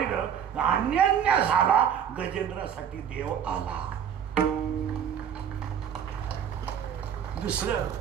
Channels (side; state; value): left; quieter; 8.5 dB